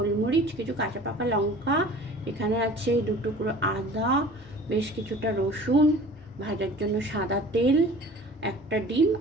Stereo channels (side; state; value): both; normal; correlation 0.44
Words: কিছু কাঁচা পাকা লঙ্কা, এখানে আছে 2 টুকরো আদা, বেশ কিছুটা রসুন, ভাজার জন্য সাদা তেল, একটা ডিম